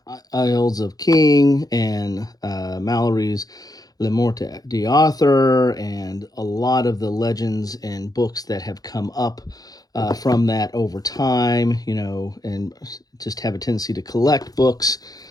Isles of King and Mallory's Le Morte d'Arthur, and a lot of the legends and books that have come up from that over time, and just have a tendency to collect books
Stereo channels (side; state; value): right; late; 0.18 ms